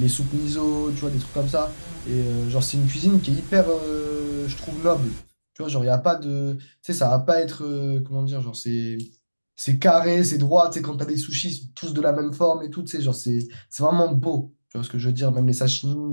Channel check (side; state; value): both; inverted; correlation -1.00